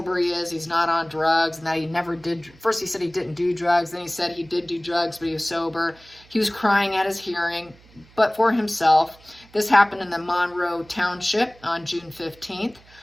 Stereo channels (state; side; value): noise; right; hum, 26 dB below the sound